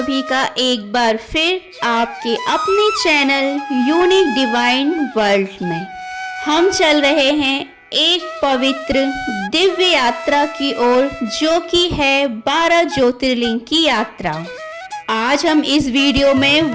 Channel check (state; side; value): identical; both; correlation 1.00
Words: का एक बार फिर आपके अपने चैनल यूनिक डिवाइन वर्ल्ड में। हम चल रहे हैं एक पवित्र दिव्य यात्रा की ओर, जो कि है 12 ज्योतिर्लिंग की यात्रा। आज हम इस वीडियो में